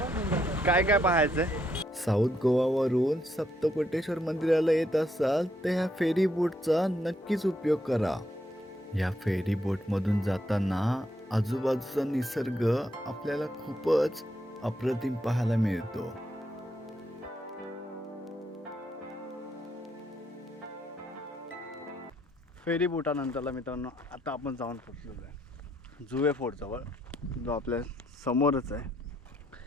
काय काय पाहायचं आहे. साऊथ गोवावरून सप्तकोटेश्वर मंदिराला येत असाल तर ह्या फेरी बोटचा नक्कीच उपयोग करा. या फेरी बोटमधून जाताना आजूबाजूचा निसर्ग आपल्याला खूपच अप्रतिम पाहायला मिळतो. फेरी बोटानंतरला मित्रांनो आता आपण जाऊन पोहोचलेलो आहे जुवे फोर्टजवळ, जो आपल्या समोरच आहे.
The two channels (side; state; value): both; normal; correlation 0.75